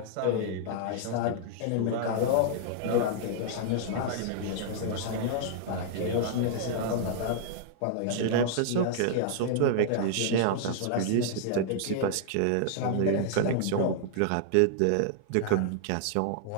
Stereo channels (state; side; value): different; both; correlation -0.01